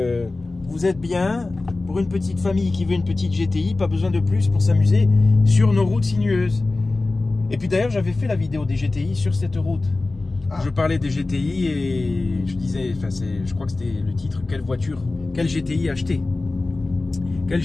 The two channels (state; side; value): quieter; right; 3.3 dB